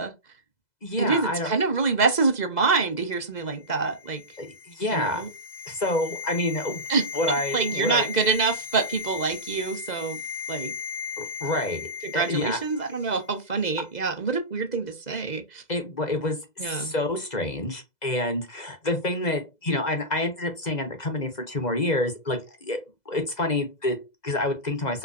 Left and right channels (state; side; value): late; right; 2.0 ms